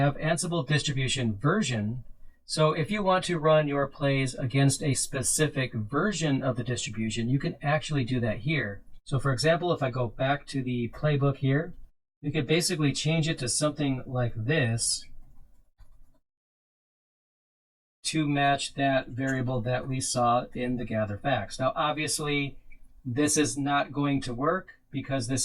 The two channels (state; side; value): identical; both; correlation 1.00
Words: Ansible distribution version. So if you want to run your plays against a specific version of the distribution, you can actually do that here. So for example, if I go back to the playbook here, we could basically change it to something like this to match that variable that we saw in the gather facts. Now, obviously, this is not going to work because